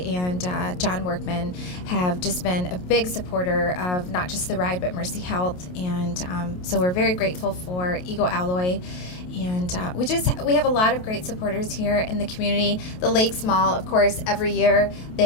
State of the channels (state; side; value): late; right; 28 ms